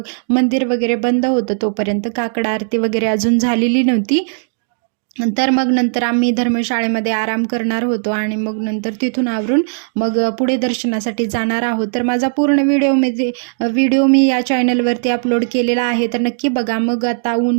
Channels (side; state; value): left; silent; digital silence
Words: मंदिर वगैरे बंद होतं, तोपर्यंत काकड आरती वगैरे अजून झालेली नव्हती. तर मग नंतर आम्ही धर्मशाळेमध्ये आराम करणार होतो आणि मग नंतर तिथून आवरून मग पुढे दर्शनासाठी जाणार आहोत. तर माझा पूर्ण व्हिडिओ मी या चॅनलवरती अपलोड केलेला आहे, तर नक्की बघा. मग आता